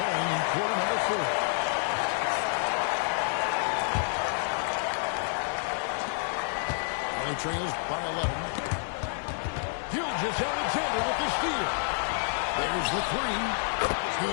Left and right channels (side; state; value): right; silent; 59 dB below the other